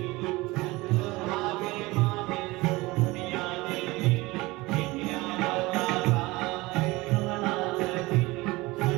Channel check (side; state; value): left; quieter; 21.5 dB